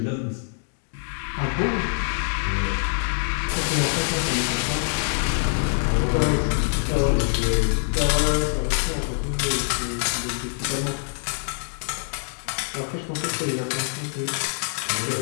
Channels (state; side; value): silent; right; 62 dB below the other